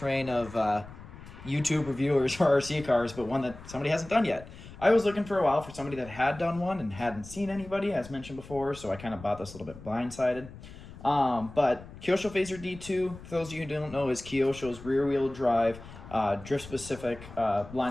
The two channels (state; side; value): noise; left; rumble, 16 dB below the sound